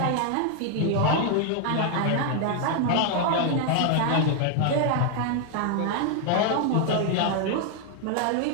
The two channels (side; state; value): both; different; correlation 0.00